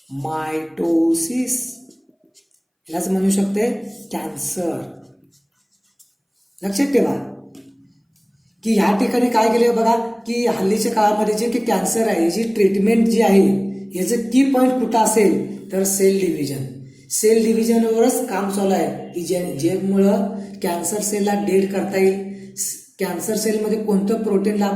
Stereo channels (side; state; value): both; identical; correlation 1.00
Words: मायटोसिस, यालाच म्हणू शकते कॅन्सर. लक्षात ठेवा की ह्या ठिकाणी काय केले बघा की हल्लीच्या काळामध्ये जे की कॅन्सर आहे याची ट्रीटमेंट जी आहे याचं की पॉईंट कुठं असेल तर सेल डिव्हिजन. सेल डिव्हिजनवरच काम चालू आहे की ज्यामुळं कॅन्सर सेलला डेड करता येईल. कॅन्सर सेलमध्ये कोणतं प्रोटीनला